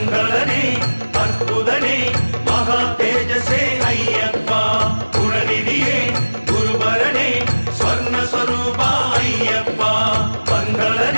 அற்புதனே மகா தேஜசே ஐயப்பா குணநிதியே குருபரனே ஸ்வர்ண ஸ்வரூபா ஐயப்பா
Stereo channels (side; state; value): both; inverted; correlation -1.00